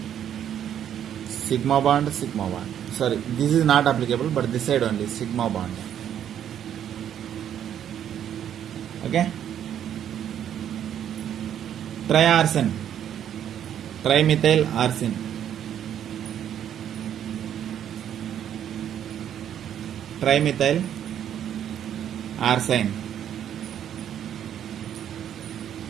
sigma bond. Sorry, this is not applicable, but this side only, sigma bond. Okay, triarsen, trimethyl arsine, trimethyl arsine,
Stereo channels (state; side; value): quieter; left; 9.8 dB